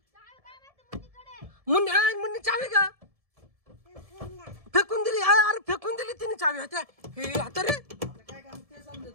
मुन्नी चावी का फेकून दिली? अरे फेकून दिली तिने चावी. होत्या हे आता रे. आता काय काम ते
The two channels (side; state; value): left; late; 1.7 ms